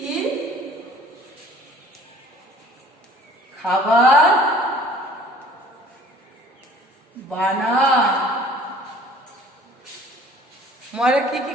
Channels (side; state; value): both; normal; correlation 0.51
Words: খাবার বানায়। ময়রা কি কি